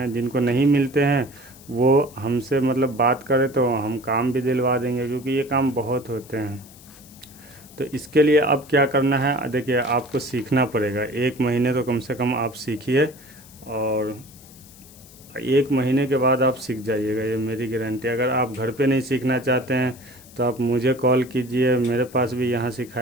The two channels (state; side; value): noise; left; hiss, 22 dB below the sound